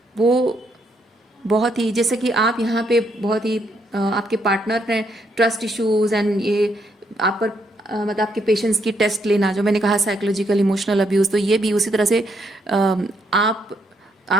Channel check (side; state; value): both; normal; correlation 0.75